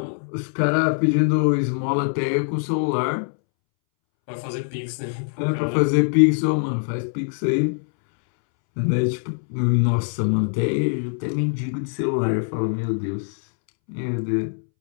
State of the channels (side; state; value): right; silent; 64 dB below the other